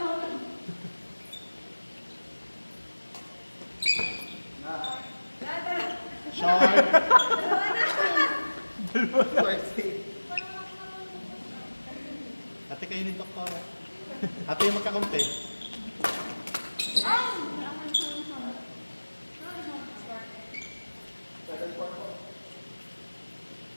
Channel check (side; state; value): both; inverted; correlation -1.00